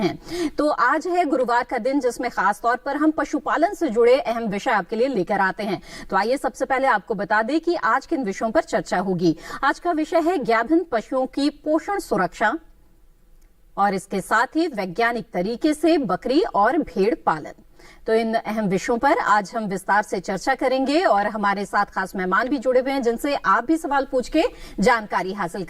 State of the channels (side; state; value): both; identical; correlation 1.00